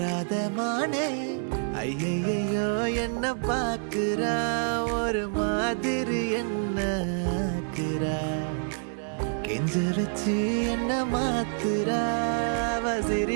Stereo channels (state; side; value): silent; left; digital silence